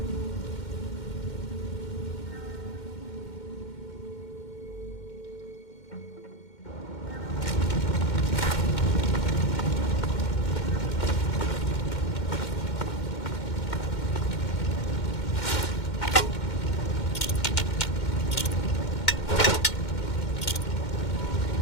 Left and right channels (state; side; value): late; right; 2.1 ms